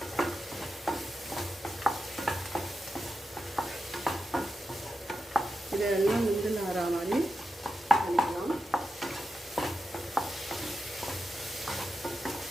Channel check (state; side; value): normal; both; correlation 0.89